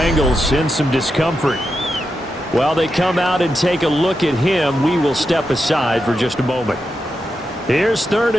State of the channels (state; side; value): normal; both; correlation 0.87